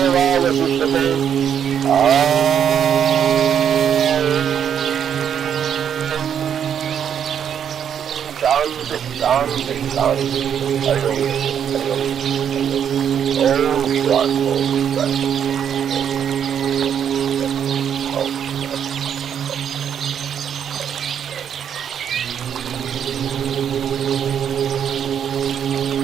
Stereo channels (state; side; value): quieter; left; 8.5 dB